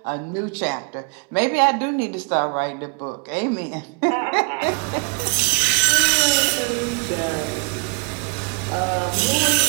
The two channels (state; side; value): quieter; left; 34.6 dB